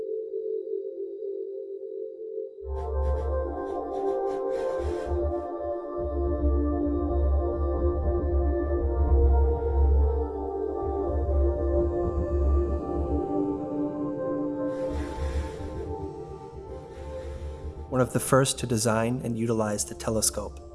One of the first to design and utilize the telescope,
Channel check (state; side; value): identical; both; correlation 1.00